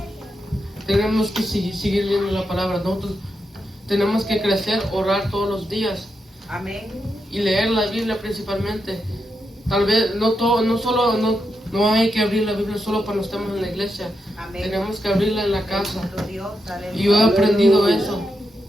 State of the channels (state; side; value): normal; both; correlation 0.85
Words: tenemos que seguir leyendo la palabra. Nosotros tenemos que crecer, orar todos los días Amén. y leer la Biblia principalmente. Tal vez no hay que abrir la Biblia solo cuando estamos en la iglesia. Amén. Tenemos que abrirla en la casa. Bendito Dios. Y yo he Aleluya. aprendido eso.